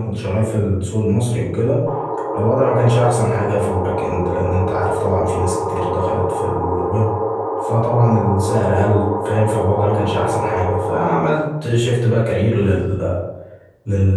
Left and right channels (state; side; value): identical; both; correlation 1.00